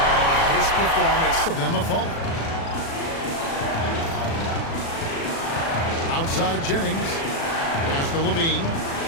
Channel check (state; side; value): late; right; 36 ms